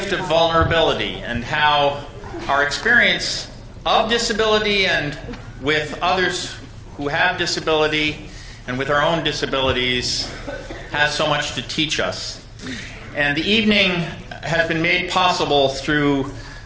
of vulnerability and how our experience of disability and with others who have disability and with our own disabilities has so much to teach us. And the evening has been made possible through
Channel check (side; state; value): both; identical; correlation 1.00